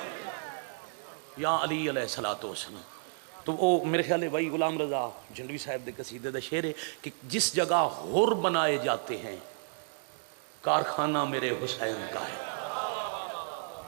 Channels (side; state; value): left; silent; digital silence